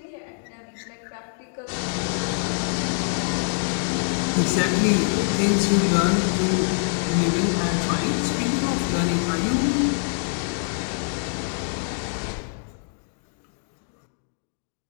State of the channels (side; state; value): right; silent; digital silence